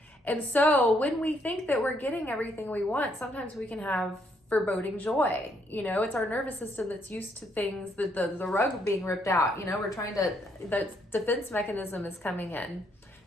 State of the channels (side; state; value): both; normal; correlation 0.72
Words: And so when we think that we're getting everything we want, sometimes we can have foreboding joy. It's our nervous system that's used to things, the rug being ripped out. The defense mechanism is coming in,